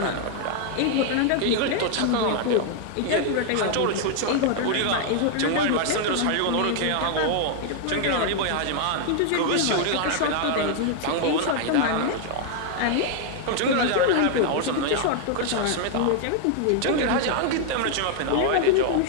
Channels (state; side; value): different; both; correlation 0.00